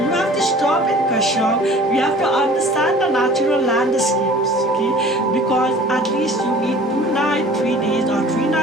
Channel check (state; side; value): normal; both; correlation 0.47